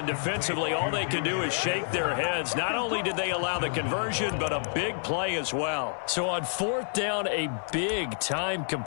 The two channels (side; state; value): right; silent; 59 dB below the other